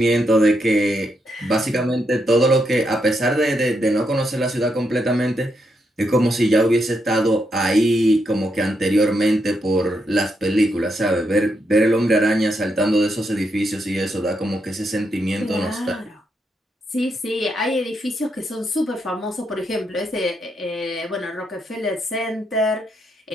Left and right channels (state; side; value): normal; both; correlation 0.80